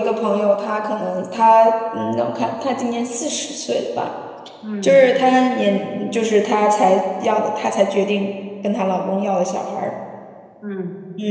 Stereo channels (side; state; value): both; identical; correlation 1.00